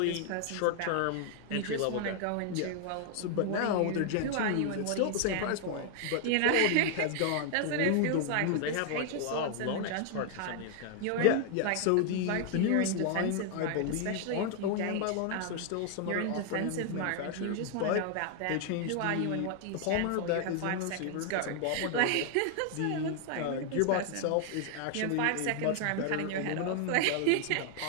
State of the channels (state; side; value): different; both; correlation 0.00